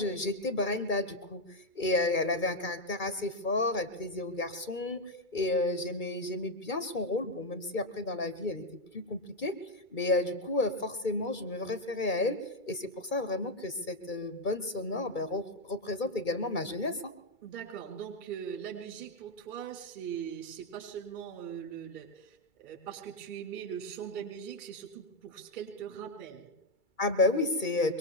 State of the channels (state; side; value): late; right; 2.3 ms